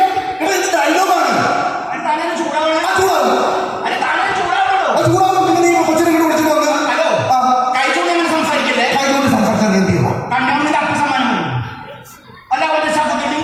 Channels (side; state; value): both; identical; correlation 1.00